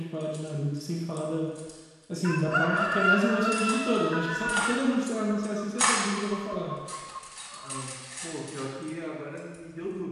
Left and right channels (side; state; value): both; identical; correlation 1.00